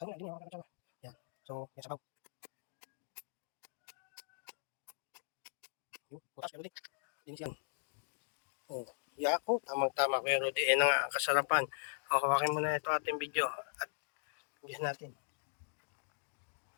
na, ganyan yung kutsara. Yan. So, yan sabaw. Butas, Kuya Rudy. Linis yan. Oh, yako, tamang-tama Kuya Rudy. Yan ang kasarapan. O, hawakin mo na ito ating video. At linis natin.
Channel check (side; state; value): right; silent; digital silence